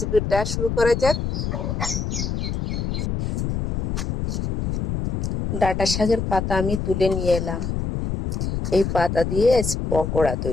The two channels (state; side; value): noise; left; rumble, 2 dB below the sound